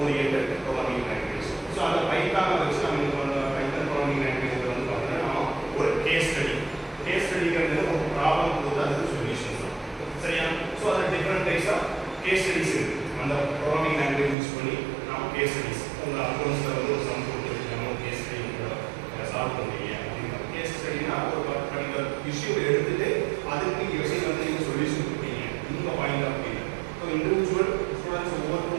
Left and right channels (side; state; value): left; drops out; at 14.4 s